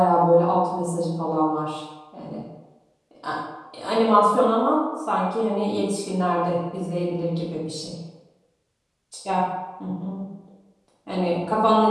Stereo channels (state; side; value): identical; both; correlation 1.00